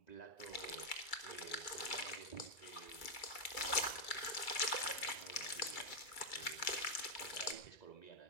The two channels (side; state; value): right; late; 2.3 ms